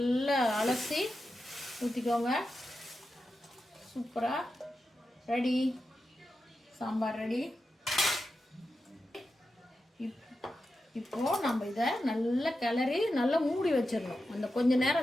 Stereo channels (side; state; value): both; normal; correlation 0.90